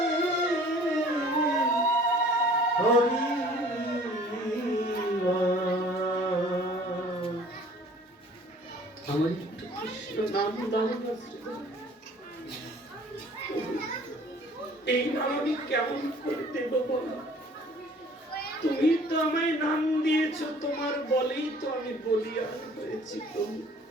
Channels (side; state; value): both; normal; correlation 0.52